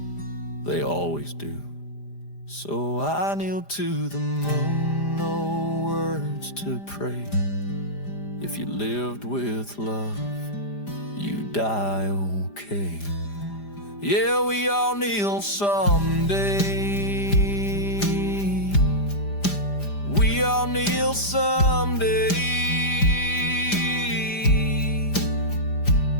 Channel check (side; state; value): right; late; 5.0 ms